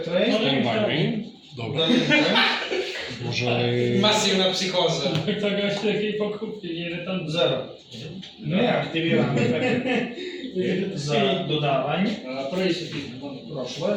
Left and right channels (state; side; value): identical; both; correlation 1.00